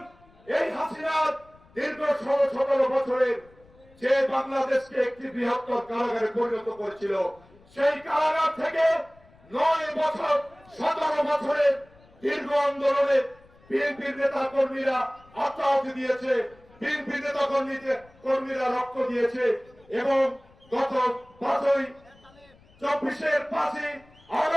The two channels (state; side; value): noise; left; rumble, 28 dB below the sound